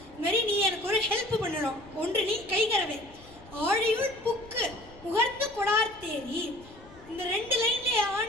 இது மாதிரி நீ எனக்கு ஒரு ஹெல்ப் பண்ணணும், ஒன்று நீ கைகரவேல். ஆழியுள் புக்கு முகர்ந்து கொடார்த்தேரி, இந்த ரெண்டு லைன்ல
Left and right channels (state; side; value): noise; left; rumble, 23 dB below the sound